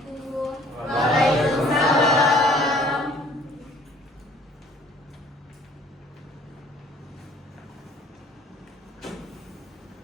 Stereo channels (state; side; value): normal; both; correlation 0.56